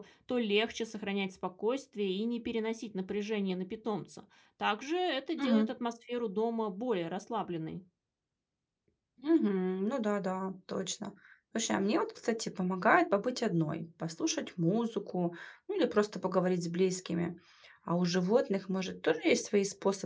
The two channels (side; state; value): both; identical; correlation 1.00